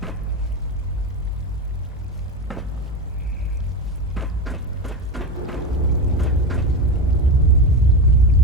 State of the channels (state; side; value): normal; both; correlation 0.19